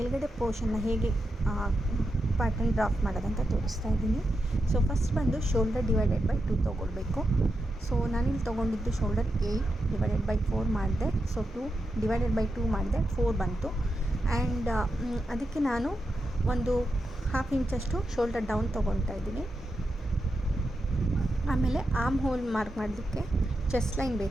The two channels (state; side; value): normal; both; correlation 0.87